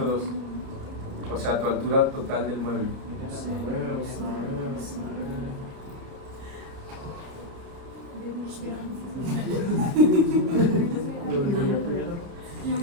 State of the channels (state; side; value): late; left; 30 ms